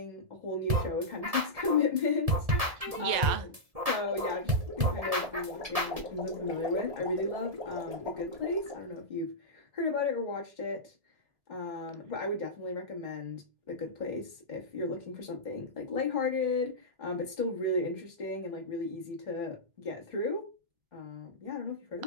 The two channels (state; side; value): late; left; 1.7 ms